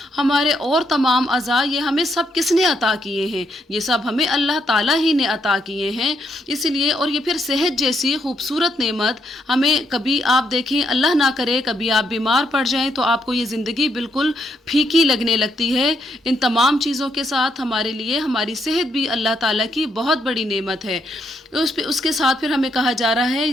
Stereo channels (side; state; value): both; normal; correlation 0.77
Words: हमारे और तमाम अज़ा, ये हमें सब किसने अता किए हैं? ये सब हमें अल्लाह ताला ही ने अता किए हैं। इसलिए और ये फिर सेहत जैसी खूबसूरत नेमत हमें, कभी आप देखें अल्लाह ना करे कभी आप बीमार पड़ जाएं तो आपको ये ज़िंदगी बिल्कुल फीकी लगने लगती है। इन तमाम चीज़ों के साथ हमारे लिए हमारी सेहत भी अल्लाह ताला की बहुत बड़ी नेमत है। उसके साथ फिर हमें कहा जा रहा है